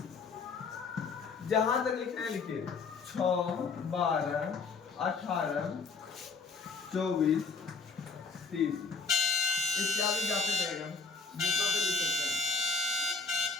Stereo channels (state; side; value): quieter; right; 4.8 dB